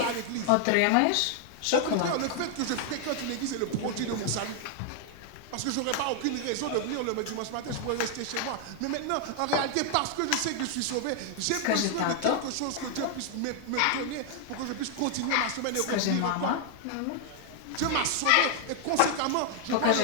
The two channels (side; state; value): both; different; correlation 0.00